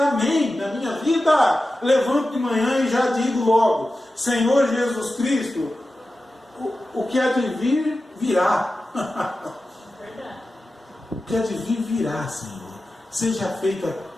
na minha vida. Levanto de manhã e já digo logo, Senhor Jesus Cristo, o que há de vir, virá. O que há de vir, virá, Senhor. Seja feita a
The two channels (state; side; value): normal; both; correlation 0.93